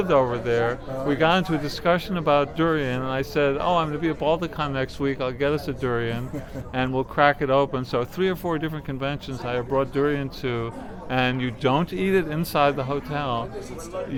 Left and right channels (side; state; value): both; identical; correlation 1.00